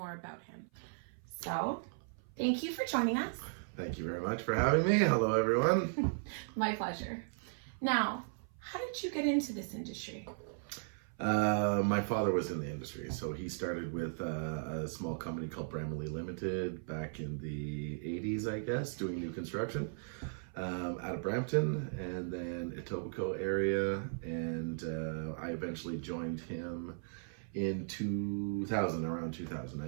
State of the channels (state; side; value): silent; left; 53 dB below the other